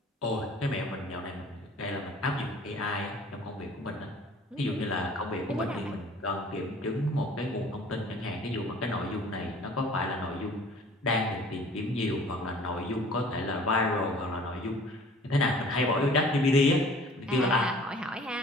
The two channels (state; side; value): normal; both; correlation 0.50